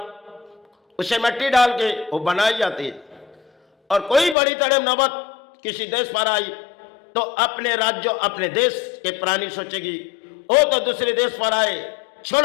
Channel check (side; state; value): right; drops out; at 4.4 s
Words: उसे मिट्टी डाल के वो बनाई जाती है, और कोई बड़ी तरह नौबत किसी देश पर आई तो अपने राज्य अपने देश के प्राणी सोचेगी, वो तो दूसरे देश पर आए,